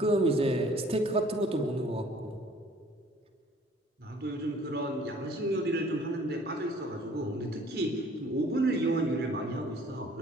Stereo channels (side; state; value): both; normal; correlation 0.55